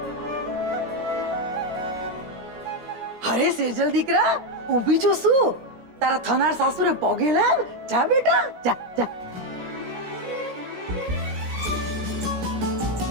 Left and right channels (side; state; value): left; late; 16 ms